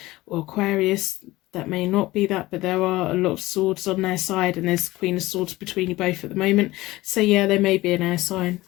or Aquarius. That may not be that, but there are a lot of swords on their side, and there's Queen of Swords between you both at the moment. So yeah, they may be an air sign.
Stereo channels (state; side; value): quieter; right; 18.6 dB